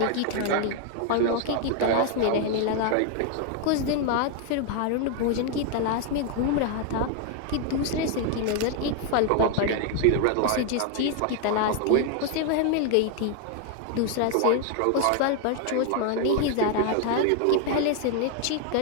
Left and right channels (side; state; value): both; different; correlation 0.00